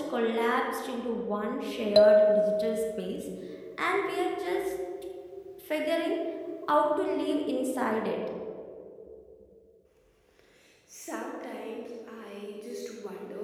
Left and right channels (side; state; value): both; identical; correlation 1.00